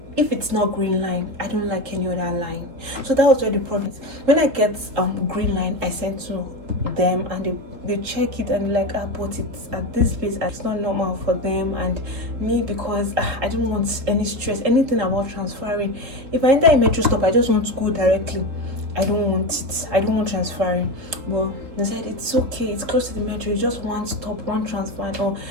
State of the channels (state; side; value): late; left; 3.7 ms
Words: If it's not green line, I don't like any other line. So that was where the problem is. When I get green line, I send to them, and they check it, and but it's at this place, it's not normal for them and me, because I don't want any stress, anything about transferring. If I enter a metro stop, I just want to go directly. I don't want it. I don't want transferring. Well, they said it's okay. It's close to the metro. It's just one stop, one transfer. Or